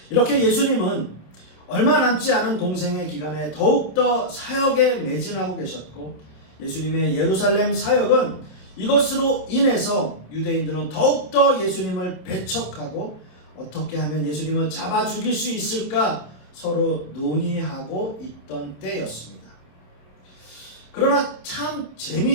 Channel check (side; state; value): right; late; 27 ms